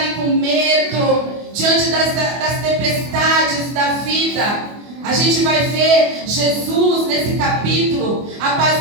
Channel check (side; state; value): left; late; 24 ms